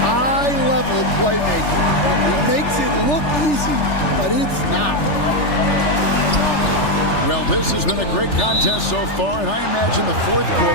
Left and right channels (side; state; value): right; late; 3.4 ms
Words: high-level playmaking. He makes it look easy, but it's not. Well, this has been a great contest so far, and I imagine the fourth